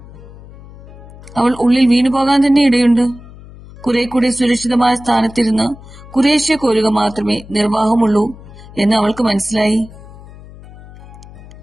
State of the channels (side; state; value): left; noise; hum, 19 dB below the sound